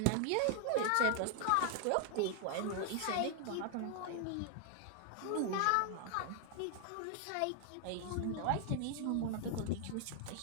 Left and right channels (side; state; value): both; different; correlation 0.00